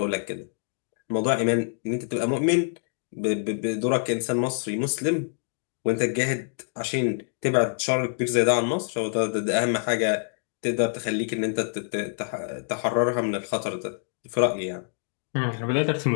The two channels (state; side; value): silent; right; digital silence